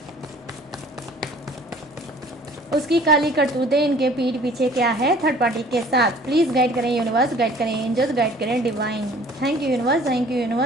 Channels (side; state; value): both; normal; correlation 0.51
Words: उसकी काली करतूतें इनके पीठ पीछे क्या है थर्ड पार्टी के साथ। प्लीज़ गाइड करें यूनिवर्स, गाइड करें एंजल्स, गाइड करें divine. Thank you universe, thank you